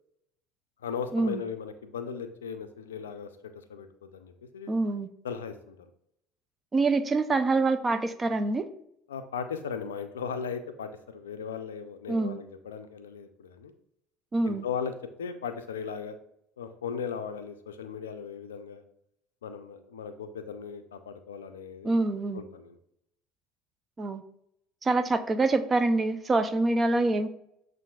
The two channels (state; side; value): normal; both; correlation 0.71